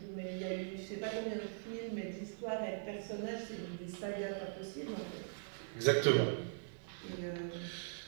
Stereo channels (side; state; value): left; silent; digital silence